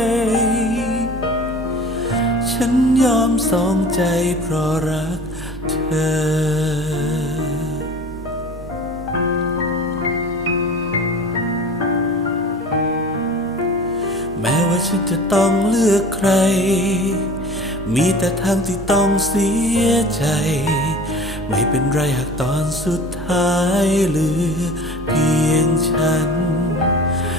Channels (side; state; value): right; noise; hum, 14 dB below the sound